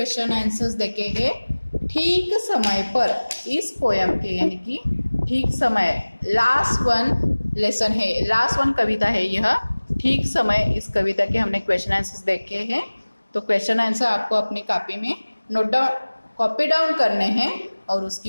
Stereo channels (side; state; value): both; inverted; correlation -1.00